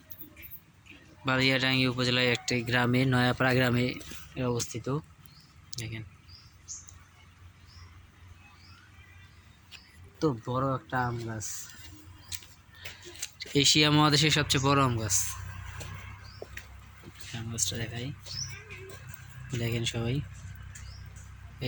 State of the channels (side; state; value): both; identical; correlation 1.00